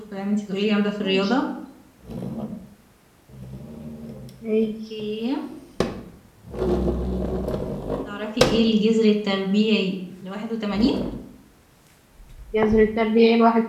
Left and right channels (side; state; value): both; identical; correlation 1.00